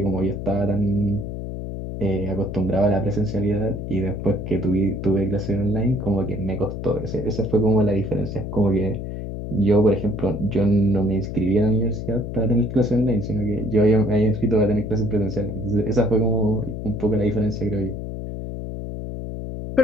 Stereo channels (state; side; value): noise; left; hum, 6 dB below the sound